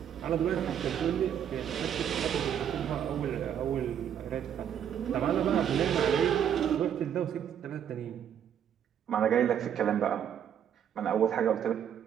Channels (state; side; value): quieter; left; 9.1 dB